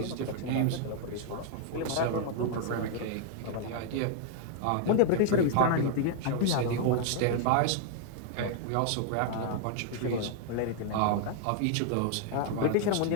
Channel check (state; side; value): different; both; correlation 0.00